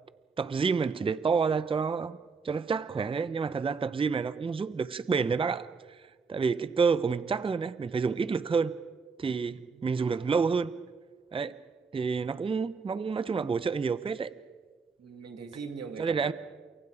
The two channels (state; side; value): quieter; left; 5.0 dB